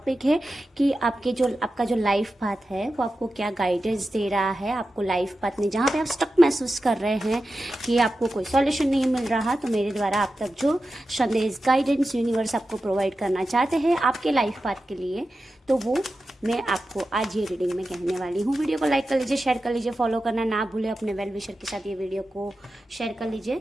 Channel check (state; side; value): normal; both; correlation 0.92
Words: है कि आपका जो लाइफ पाथ है वो आपको क्या गाइडेंस दे रहा है। आपको लाइफ पाथ में जहाँ पे आप स्टक महसूस कर रहे हैं कि आपको कोई सॉल्यूशन नहीं मिल रहा, तो मेरे द्वारा आप तक जो संदेश गाइडेंस यूनिवर्स आपको प्रोवाइड करना चाहते हैं आपके लाइफ पाथ के लिए, तो वो मैं आपको आज ये रीडिंग में कहने वाली हूँ। वीडियो को लाइक कर लीजिए, शेयर कर लीजिए, फॉलो करना ना भूलें। अपने वेल विशर के साथ ये वीडियो को शेयर कर